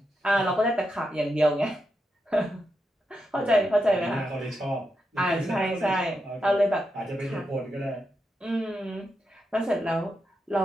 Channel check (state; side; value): normal; both; correlation 0.85